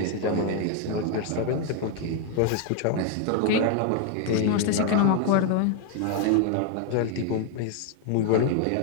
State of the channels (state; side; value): different; both; correlation 0.00